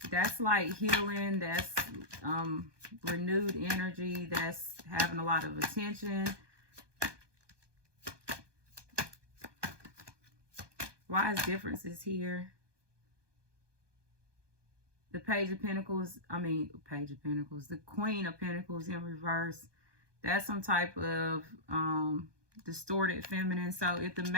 That's like healing. That's renewed energy. That's having a lot of attention. Why is differences here? The Page of Pentacles, the Queen of Pentacles in reverse. That's some type of distorted feminine. So if the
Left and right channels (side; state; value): left; late; 1.2 ms